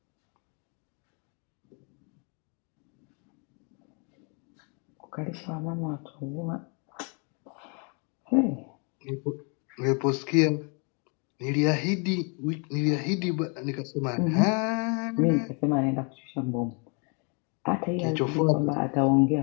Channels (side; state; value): right; quieter; 35.3 dB